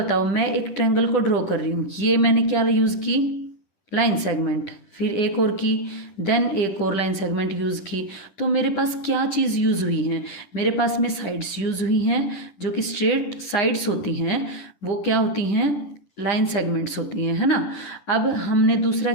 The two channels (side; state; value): right; late; 10 ms